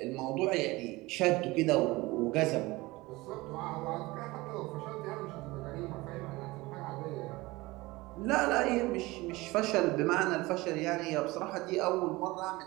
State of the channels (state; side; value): quieter; left; 21.1 dB